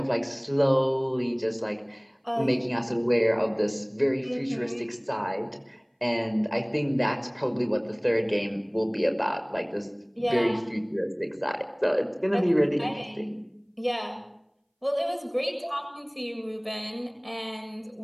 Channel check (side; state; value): both; identical; correlation 1.00